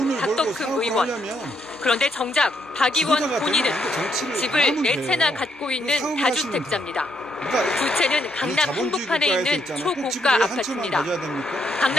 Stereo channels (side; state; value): both; normal; correlation 0.75